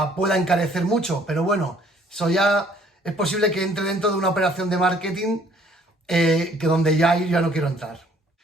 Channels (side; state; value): both; normal; correlation 0.60